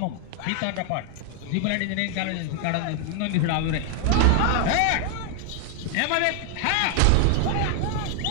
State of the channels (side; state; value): both; different; correlation 0.00